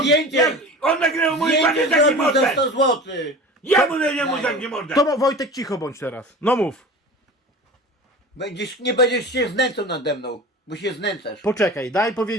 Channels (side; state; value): both; normal; correlation 0.35